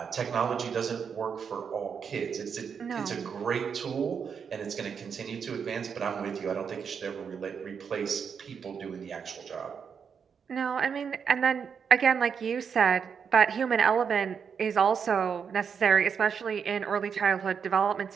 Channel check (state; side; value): quieter; left; 6.7 dB